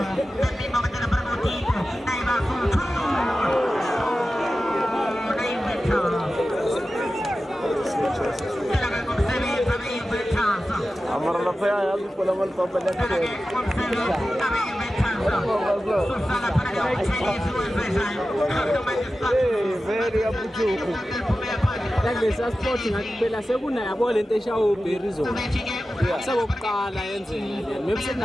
Amar la fea ya su pola mal papel de very apuchuku. Lesa sport ngakubela sekuna yabo lento eshawo berry zone. Sabokuqala yenzeka. Maybe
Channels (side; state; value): both; normal; correlation 0.94